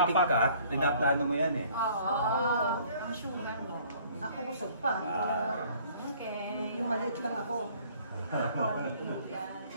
ka, pinaplano mo yan eh. Oo. Ang sugar mo. Ako busog pa. Okay. Yung maliit lang ako.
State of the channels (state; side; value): inverted; both; correlation -0.56